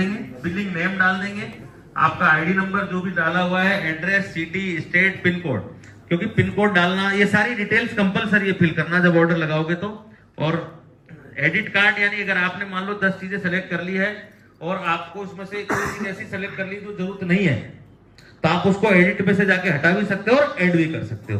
बिलिंग नेम डाल देंगे, आपका आईडी नंबर जो भी डाला हुआ है, address, city, state, pin code, क्योंकि पिन कोड डालना, ये सारी डिटेल्स कंपलसरी है फिल करना जब ऑर्डर लगाओगे तो। और एडिट कार्ड, यानी अगर आपने मान लो 10 चीजें सेलेक्ट कर ली है और आपको उसमें से कोई चीज ऐसी सेलेक्ट कर ली जो जरूरत नहीं है, तो आप उसको एडिट पे से जाके हटा भी सकते हो और ऐड भी कर सकते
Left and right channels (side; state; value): both; identical; correlation 1.00